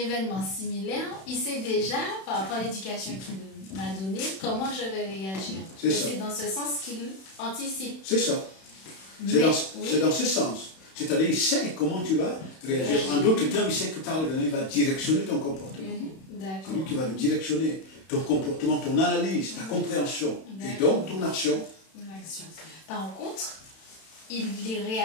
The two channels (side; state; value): right; late; 31 ms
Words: similaire, il sait déjà, par rapport à l'éducation qu'il m'a donnée, comment je vais réagir. C'est dans ce sens qu'il anticipe. C'est ça. C'est dans ce sens. C'est-à-dire, il sait comment tu vas réagir. En d'autres termes, il sait que par l'événement, il va directionner ton comportement. C'est lui qui va le directionner. Ton comportement, ton analyse, ta compréhension. Et donc, ton action. Par contre, il est